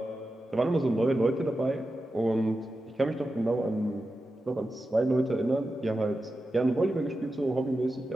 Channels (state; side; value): normal; both; correlation 0.91